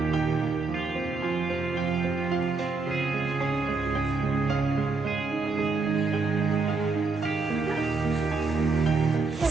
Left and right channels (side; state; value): left; quieter; 4.0 dB